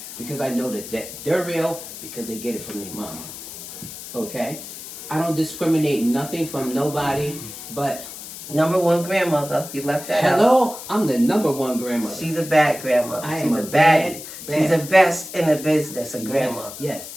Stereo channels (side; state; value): left; noise; hiss, 12 dB below the sound